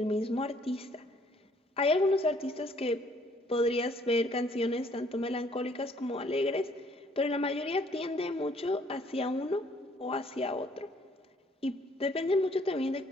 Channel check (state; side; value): normal; both; correlation 0.63